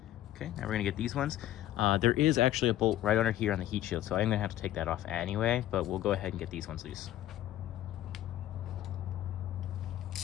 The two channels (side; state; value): right; quieter; 13.4 dB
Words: Okay, now we're gonna get these ones. There is actually a bolt right under here on the heat shield, so I'm gonna have to take that off anyway, but we'll go ahead and get these ones loose.